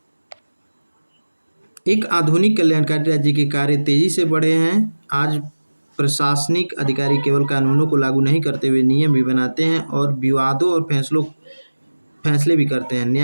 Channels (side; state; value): both; inverted; correlation -1.00